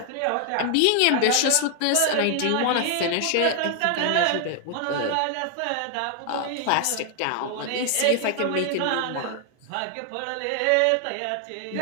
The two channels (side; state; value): both; different; correlation 0.00